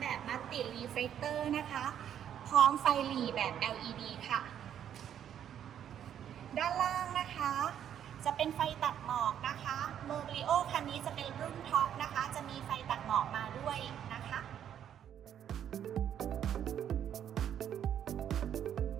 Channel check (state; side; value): quieter; left; 9.7 dB